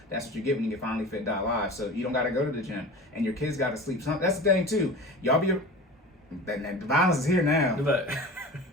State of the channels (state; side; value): normal; both; correlation 0.35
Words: That's what you get when you get FinallyFit.live. So you don't gotta go to the gym, and your kids gotta sleep. That's the thing too. Y'all be the violence is here now. Look, he